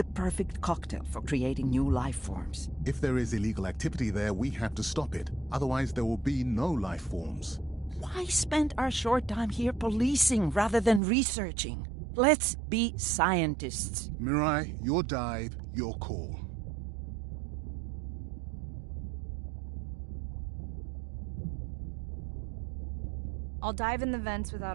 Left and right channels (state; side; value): drops out; left; at 11.0 s